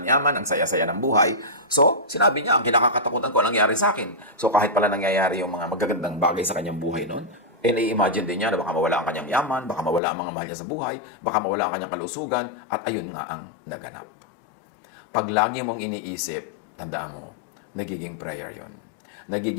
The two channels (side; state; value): right; drops out; at 10.0 s